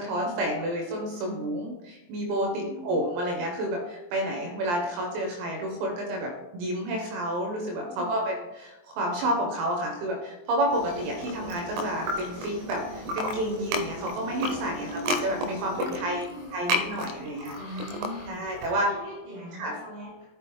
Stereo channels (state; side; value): late; left; 23 ms